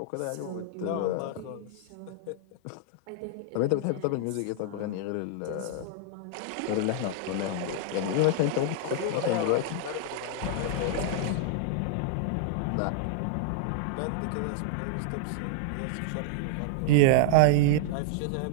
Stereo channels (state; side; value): different; both; correlation -0.01